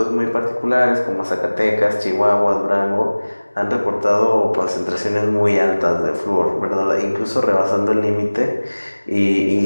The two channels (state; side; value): inverted; both; correlation -1.00